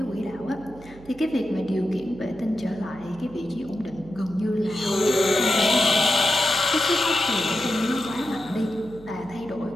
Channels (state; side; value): noise; right; hum, 20 dB below the sound